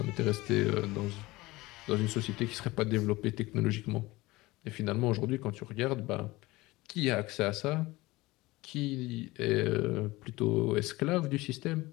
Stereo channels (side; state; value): right; quieter; 20.4 dB